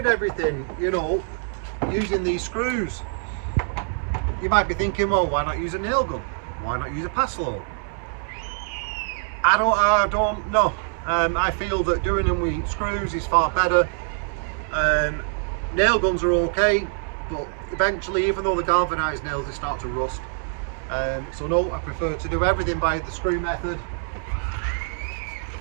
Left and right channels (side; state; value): left; silent; 62 dB below the other